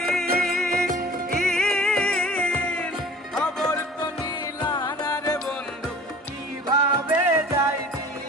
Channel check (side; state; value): both; normal; correlation 0.45